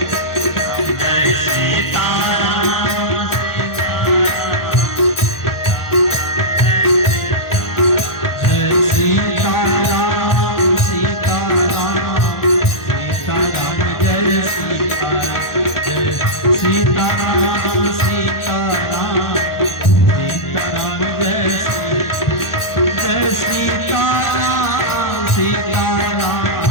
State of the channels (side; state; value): right; late; 1.4 ms